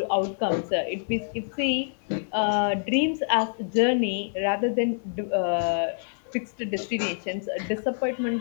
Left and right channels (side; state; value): right; silent; digital silence